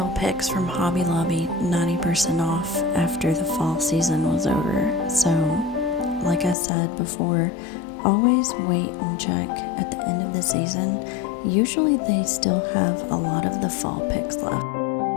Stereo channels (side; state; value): right; drops out; at 6.6 s